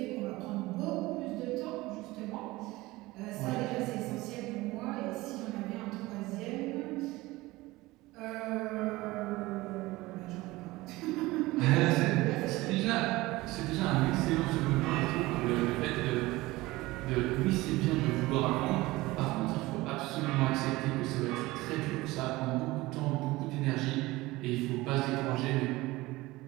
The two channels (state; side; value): quieter; left; 19.9 dB